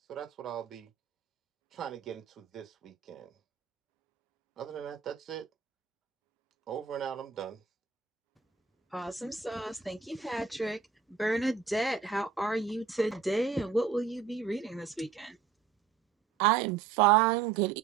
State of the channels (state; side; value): quieter; left; 6.1 dB